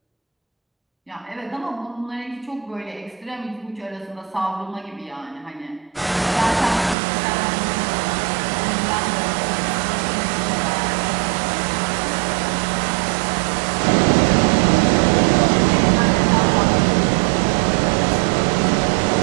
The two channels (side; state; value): left; drops out; at 7.0 s